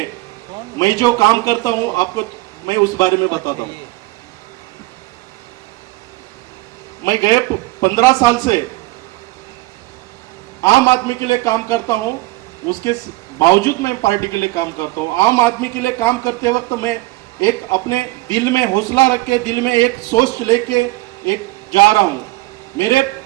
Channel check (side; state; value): left; quieter; 20.6 dB